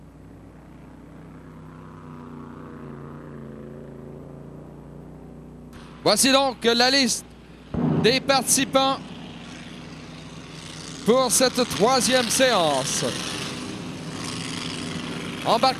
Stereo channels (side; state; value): both; identical; correlation 1.00